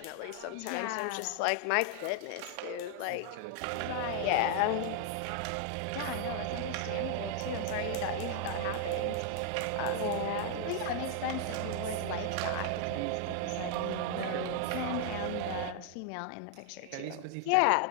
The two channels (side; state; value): both; different; correlation 0.00